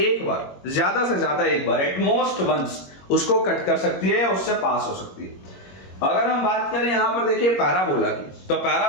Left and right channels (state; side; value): late; right; 21 ms